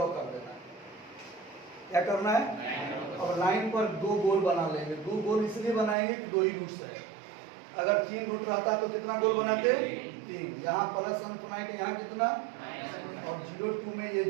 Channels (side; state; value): left; drops out; at 6.0 s